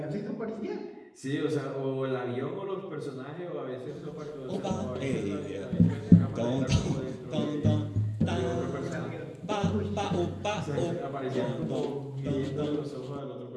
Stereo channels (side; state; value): both; identical; correlation 1.00